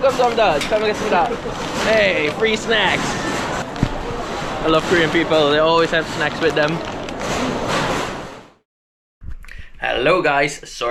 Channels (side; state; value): both; identical; correlation 1.00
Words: 잘 먹겠습니다. Hey, free snacks. I love Korean people. They always have snacks with them. Hello guys,